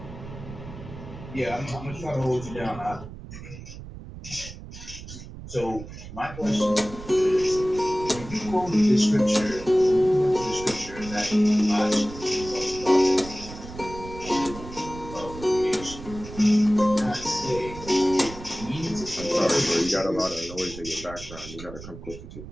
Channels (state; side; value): noise; right; rumble, 13 dB below the sound